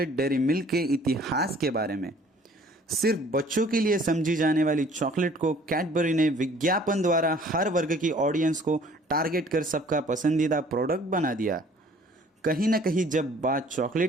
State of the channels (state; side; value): normal; both; correlation 0.55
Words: डेयरी मिल्क के इतिहास के बारे में। सिर्फ बच्चों के लिए समझी जाने वाली चॉकलेट को कैडबरी ने विज्ञापन द्वारा हर वर्ग की ऑडियंस को टारगेट कर सबका पसंदीदा प्रोडक्ट बना दिया। कहीं ना कहीं जब बात